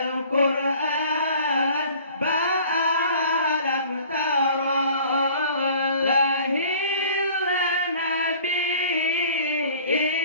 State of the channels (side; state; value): both; inverted; correlation -0.49